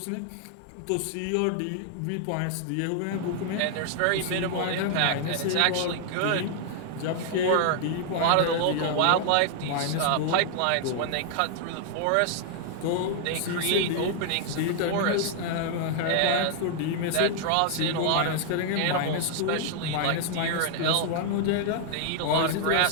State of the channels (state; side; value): different; both; correlation 0.00